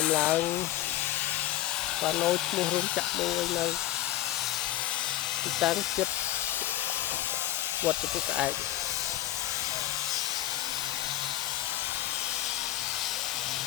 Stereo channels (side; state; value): right; quieter; 14.5 dB